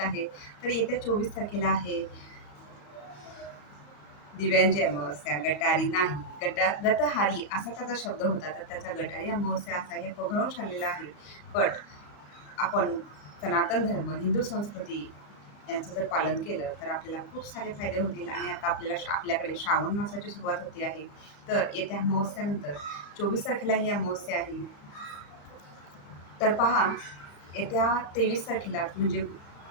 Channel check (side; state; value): right; late; 34 ms